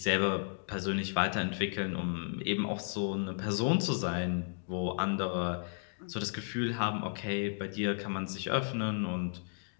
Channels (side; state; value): right; silent; digital silence